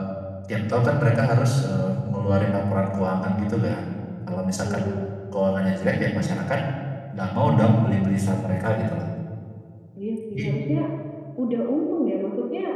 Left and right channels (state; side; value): identical; both; correlation 1.00